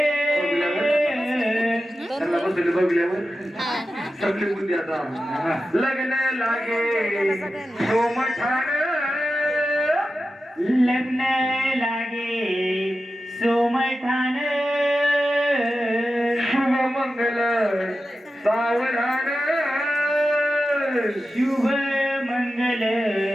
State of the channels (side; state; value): both; normal; correlation 0.92